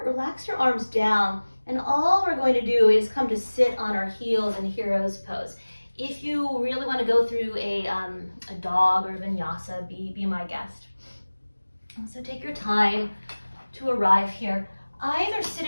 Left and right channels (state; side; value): inverted; both; correlation -1.00